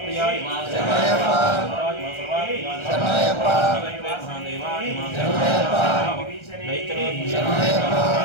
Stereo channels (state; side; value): late; right; 1.3 ms